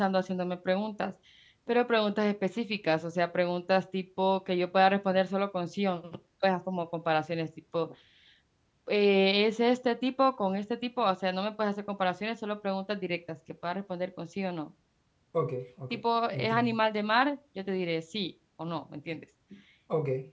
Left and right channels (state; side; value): identical; both; correlation 1.00